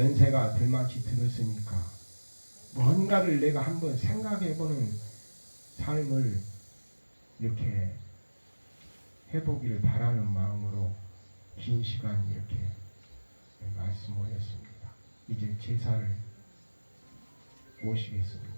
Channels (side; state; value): both; inverted; correlation -1.00